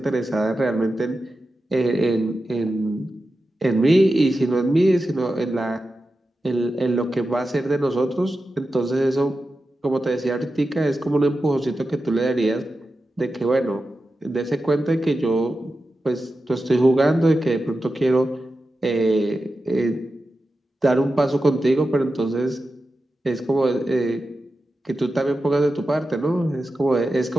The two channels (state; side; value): normal; both; correlation 0.91